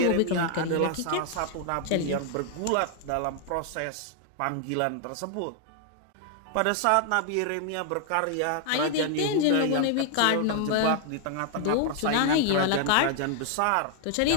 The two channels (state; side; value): different; both; correlation 0.00